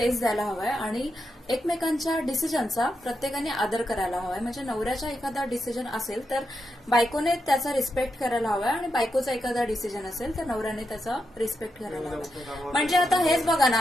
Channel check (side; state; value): both; normal; correlation 0.85